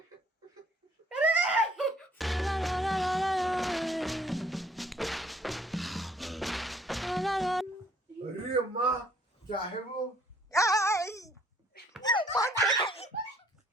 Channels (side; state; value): both; normal; correlation 0.61